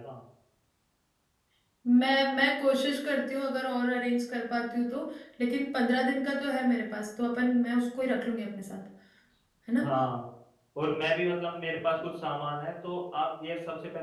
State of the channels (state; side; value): identical; both; correlation 1.00